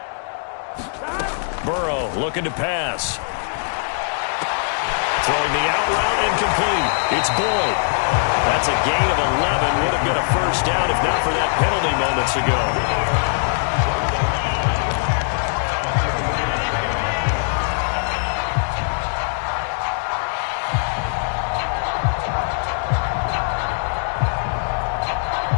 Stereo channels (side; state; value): right; silent; digital silence